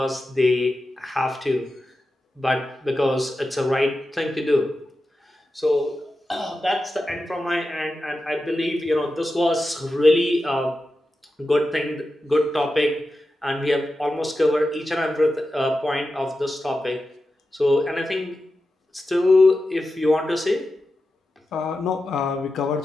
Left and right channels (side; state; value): both; normal; correlation 0.91